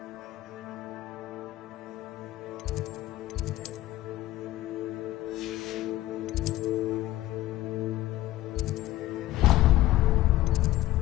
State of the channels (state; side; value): quieter; right; 15.8 dB